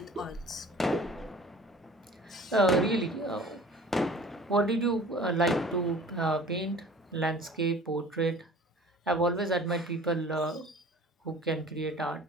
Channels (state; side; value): normal; both; correlation 0.46